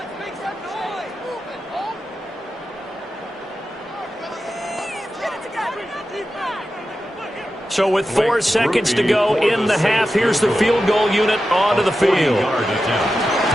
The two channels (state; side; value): normal; both; correlation 0.91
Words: So with 4 seconds to go in the half, here's the field goal unit onto the field.